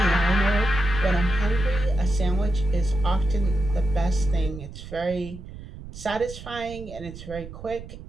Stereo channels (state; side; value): noise; right; rumble, 14 dB below the sound